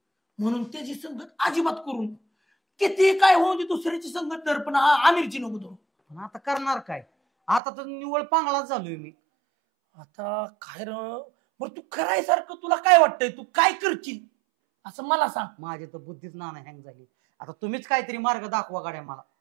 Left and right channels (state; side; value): drops out; left; at 7.6 s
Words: म्हणून त्याची संगत अजिबात करून किती काय होऊन दे दुसऱ्याची संगत धर, पण आमिरची नको धरू. पण आता करणार काय? आता तर निवळ पांगळाच झालोय मी. आता काय बरं तू करायसारखं तुला काय वाटतंय? तू काय करशील असं मला सांग. माझी तर बुद्धीच नाना हँग झाली. आता तुम्हीच काहीतरी मार्ग दाखवा गाड्या मला.